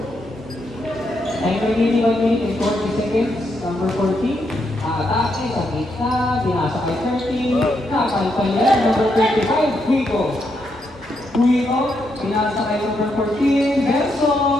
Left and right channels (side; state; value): both; normal; correlation 0.79